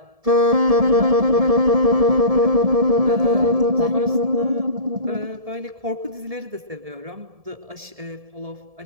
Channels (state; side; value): late; left; 1.7 ms